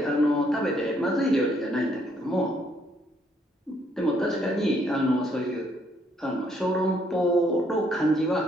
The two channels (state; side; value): normal; both; correlation 0.69